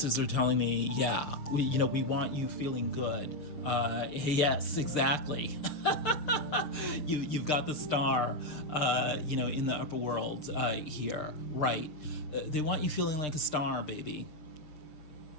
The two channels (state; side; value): late; right; 6.7 ms